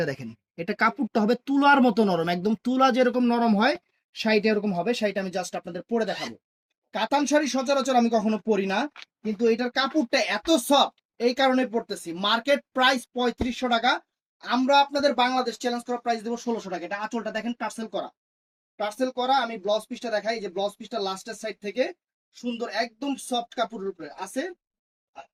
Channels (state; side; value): identical; both; correlation 1.00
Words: দেখেন, এটা কাপড়টা হবে তুলার মতো নরম, একদম তুলা যেরকম নরম হয় শাড়িটা এরকম হবে। শাড়িটা আমি জাস্ট আপনাদের পরে দেখাবো। কাতান শাড়ি সচরাচর আমি কখনো পরি না, কিন্তু এটার কাপড়টা এত সফট, এই কারণে পরতেছি। মার্কেট প্রাইস 3500 টাকা, আমরা আপনাদের বাংলাদেশ চ্যালেঞ্জ করা প্রাইস দেবো 1600 টাকা। এটা আঁচলটা দেখেন টার্সেল করা, টার্সেল করা। আমি ব্লাউজ পিসটা দেখাই, যে ব্লাউজ পিসটা লাস্টের সাইড থেকে সুন্দর একদম সফট কাপড়ের উপরে আছে।